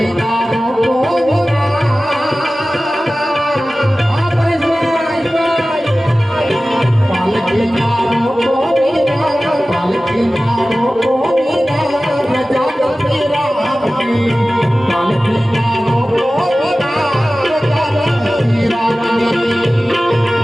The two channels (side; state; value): both; normal; correlation 0.96